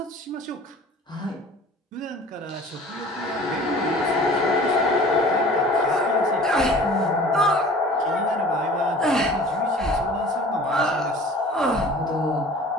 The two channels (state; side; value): normal; both; correlation 0.45